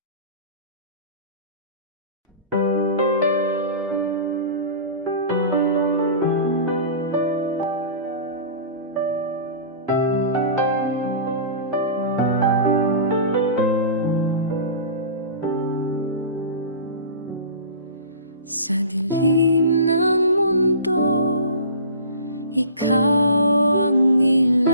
Sa dilim ng mundo, ikaw ang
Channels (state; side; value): inverted; both; correlation -0.38